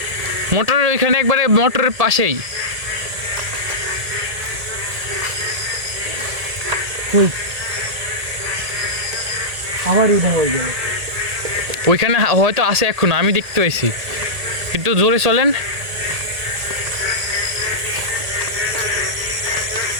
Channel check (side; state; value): left; late; 1.8 ms